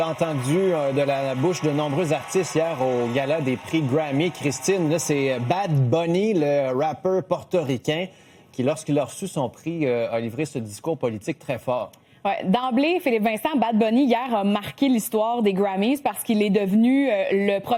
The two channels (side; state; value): both; identical; correlation 1.00